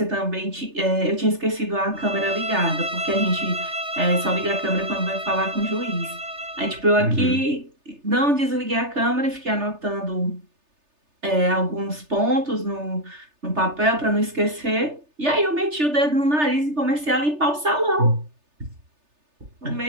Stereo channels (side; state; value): left; late; 3.3 ms